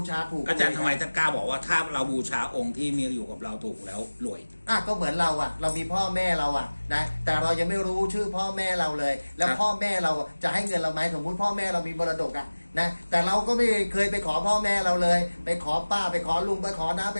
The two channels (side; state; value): both; inverted; correlation -1.00